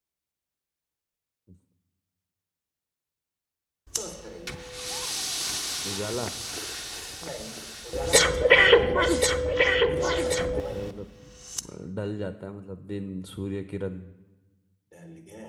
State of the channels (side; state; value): both; identical; correlation 1.00